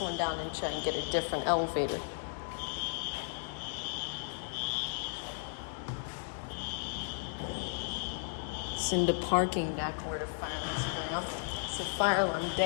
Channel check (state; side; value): silent; right; digital silence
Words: down and try and get a different elevator. It's in the parking deck where the fire alarm's going off. It's a fire alarm